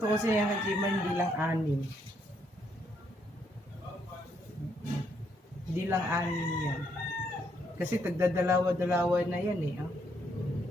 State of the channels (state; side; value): normal; both; correlation 0.73